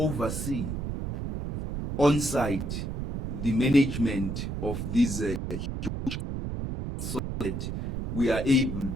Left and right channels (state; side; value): noise; right; rumble, 4 dB below the sound